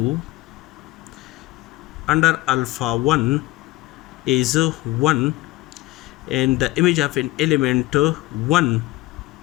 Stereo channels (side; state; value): right; quieter; 18.8 dB